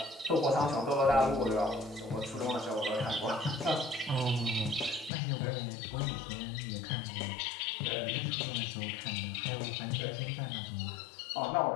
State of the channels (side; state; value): right; drops out; at 5.1 s